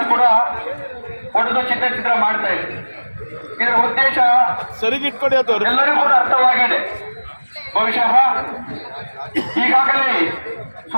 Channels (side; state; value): both; inverted; correlation -1.00